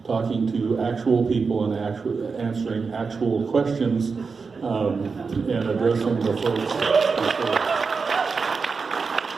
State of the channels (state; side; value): quieter; left; 4.9 dB